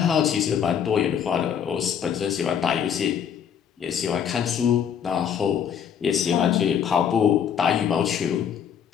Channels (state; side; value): quieter; right; 8.3 dB